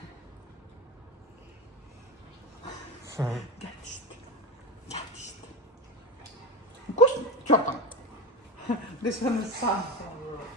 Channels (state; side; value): normal; both; correlation 0.21